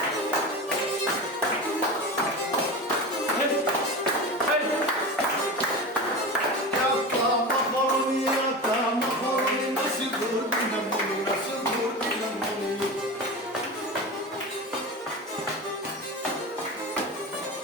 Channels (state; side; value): normal; both; correlation 0.27